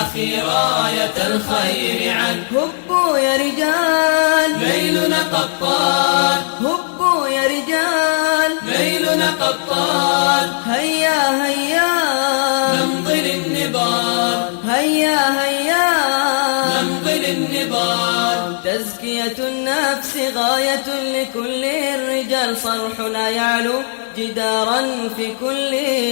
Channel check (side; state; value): right; silent; digital silence